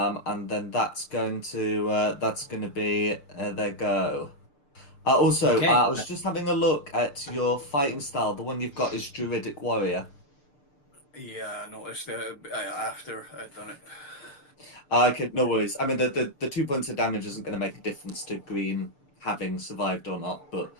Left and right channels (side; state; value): right; late; 6.7 ms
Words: And then that's going to be their go. Also, Okay. I was just having a look at your fighting style. The one you've got is Druidic Warrior. Yeah, I noticed that after I'd done it. Okay, no worries. I mean, the 2 points of damage isn't going to make a difference to Green having survived or not, but